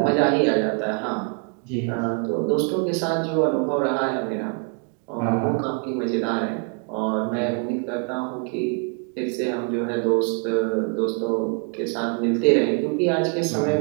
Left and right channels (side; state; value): left; quieter; 36.9 dB